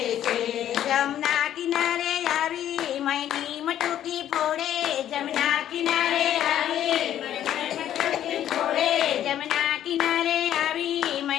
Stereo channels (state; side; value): quieter; right; 11.2 dB